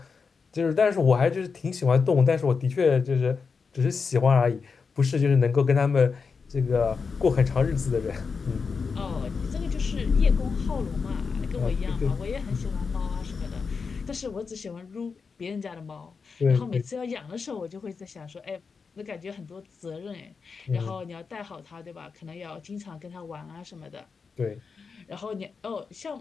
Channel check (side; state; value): right; quieter; 5.2 dB